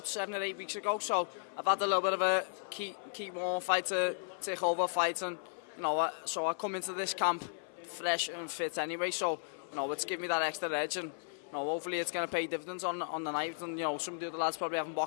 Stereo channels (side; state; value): right; silent; 54 dB below the other